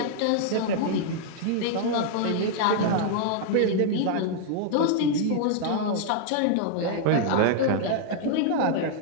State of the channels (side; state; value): both; different; correlation -0.01